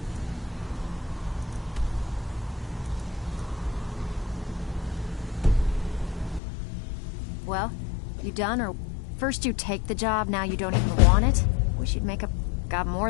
Well, You done, or first you take the job, now you don't even want it? Wish you'd make up. Got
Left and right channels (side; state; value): right; drops out; at 6.4 s